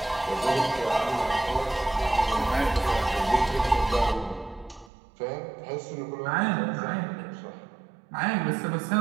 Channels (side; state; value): left; drops out; at 4.9 s